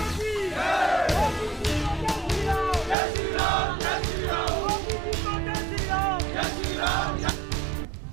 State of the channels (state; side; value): drops out; left; at 3.0 s